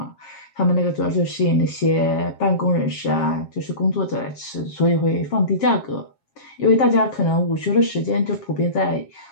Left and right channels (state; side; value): late; right; 7.4 ms